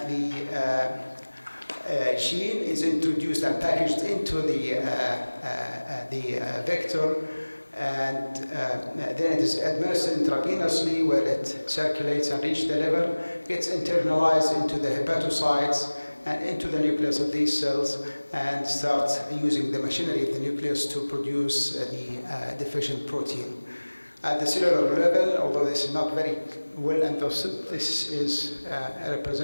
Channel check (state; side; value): inverted; both; correlation -1.00